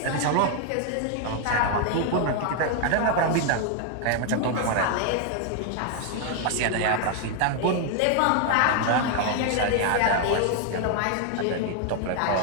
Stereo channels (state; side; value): different; both; correlation 0.00